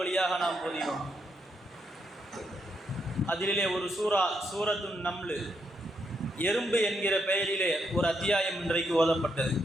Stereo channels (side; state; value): both; normal; correlation 0.78